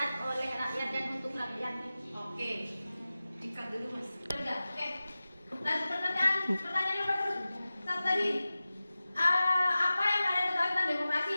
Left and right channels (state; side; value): inverted; both; correlation -0.96